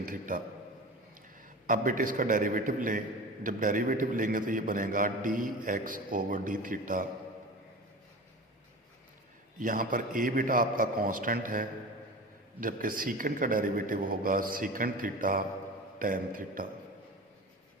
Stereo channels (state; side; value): normal; both; correlation 0.33